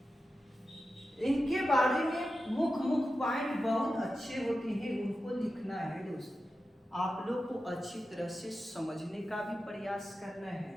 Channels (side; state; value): both; normal; correlation 0.92